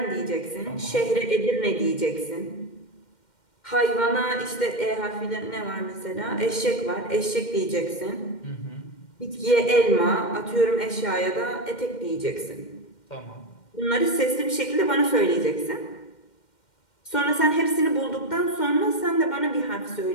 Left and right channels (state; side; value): late; right; 2.1 ms